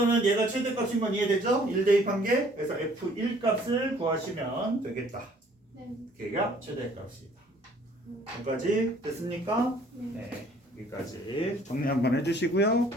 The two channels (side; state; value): both; normal; correlation 0.58